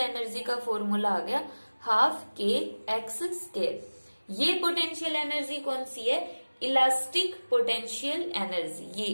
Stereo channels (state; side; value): inverted; both; correlation -1.00